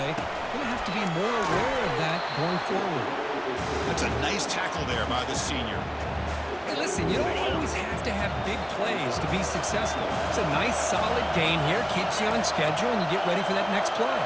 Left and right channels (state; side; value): identical; both; correlation 1.00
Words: Going to have to be more aware of that going forward. That's a nice tackle there by the senior. Hey, listen, you don't always have to have big plays to be successful. It's a nice, solid gain here. Keeps you on schedule, and you get ready for that next play.